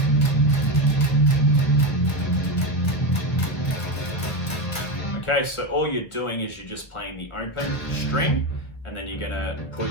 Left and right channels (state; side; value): late; right; 1.2 ms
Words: Okay, so all you're doing is you're just playing the open string, and then you're gonna put